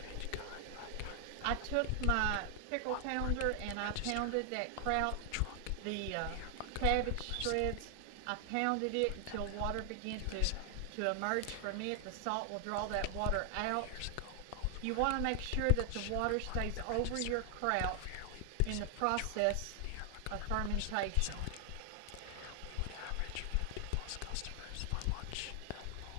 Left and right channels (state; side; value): different; both; correlation 0.00